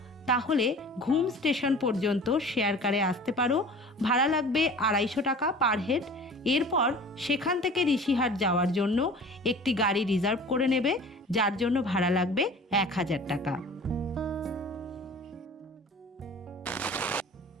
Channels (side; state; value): both; normal; correlation 0.42